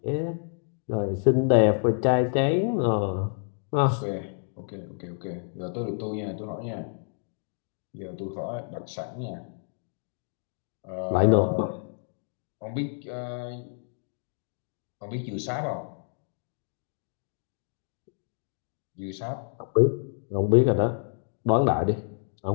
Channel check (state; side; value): silent; right; 59 dB below the other